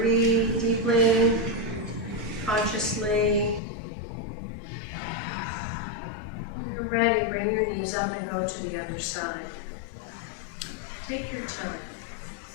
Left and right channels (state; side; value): drops out; right; at 3.6 s